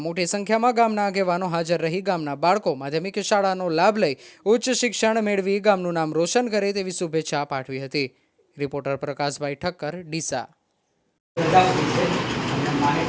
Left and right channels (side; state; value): both; identical; correlation 1.00